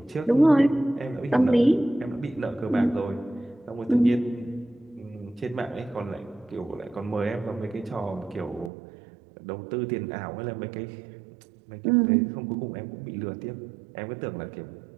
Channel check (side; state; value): left; drops out; at 8.7 s